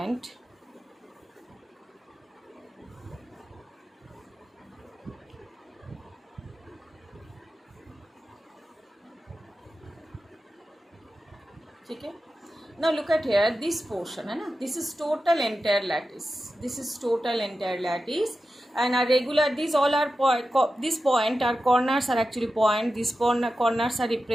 okay. Now look at here, this portion, this is total entire lattice. And a regular, these all are this point are corners are actually point. These corners are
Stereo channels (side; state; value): both; normal; correlation 0.92